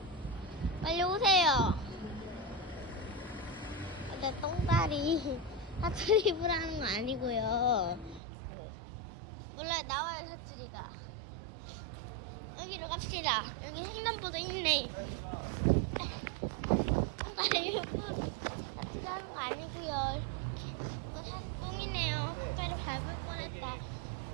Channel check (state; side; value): drops out; left; at 8.2 s